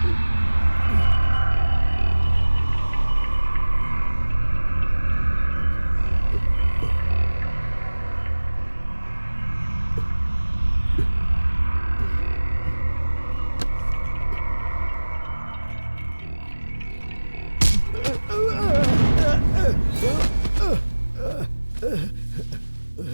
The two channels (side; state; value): both; inverted; correlation -1.00